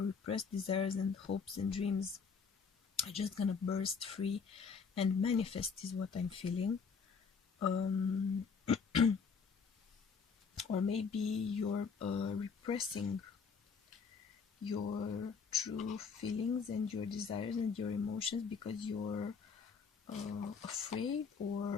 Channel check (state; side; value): quieter; right; 5.6 dB